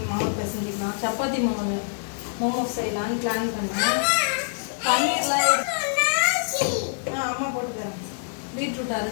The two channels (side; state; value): right; silent; 56 dB below the other